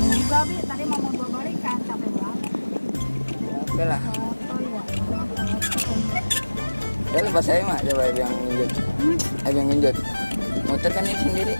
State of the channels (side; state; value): both; inverted; correlation -1.00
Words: juga, Bi. Tadi mau bawa balikan, capek banget. Ya, oke lah. Oh iya. Ya lepas saya mah, coba yang genjot. Yang genjot. Motor kan ini sendiri.